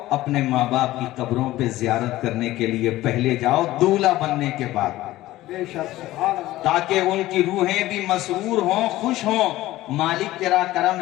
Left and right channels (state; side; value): quieter; right; 16.3 dB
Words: اپنے ماں باپ کی قبروں پہ زیارت کرنے کے لیے پہلے جاؤ دولہا بننے کے بعد، بے شک سبحان اللہ۔ تاکہ ان کی روحیں بھی مسرور ہوں، خوش ہوں، مالک تیرا کرم